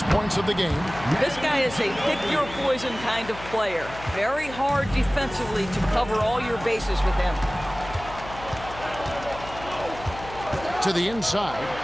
points of the game. This guy is a pick-your-poison kind of player. Very hard defensively to cover all your bases with him. To the inside,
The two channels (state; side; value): noise; left; hum, 14 dB below the sound